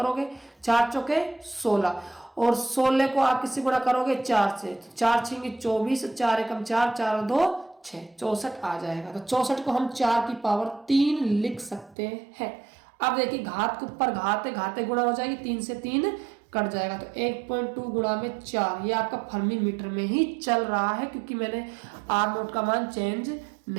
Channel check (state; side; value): drops out; left; at 12.0 s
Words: 4 चौके 16, और 16 को आप किससे गुणा करोगे 4 से, 4 छेंगे 24, 4 एकम 4, 4 और 2 6, 64 आ जाएगा। तो 64 को हम 4 की पावर 3 लिख सकते हैं। अब देखिए घात के ऊपर घात है, घाते गुणा हो जाएगी, 3 से 3 कट जाएगा। तो 1.2 गुणा में 4, ये आपका फर्मी मीटर में ही चल रहा है, क्योंकि मैंने R0 का मान चेंज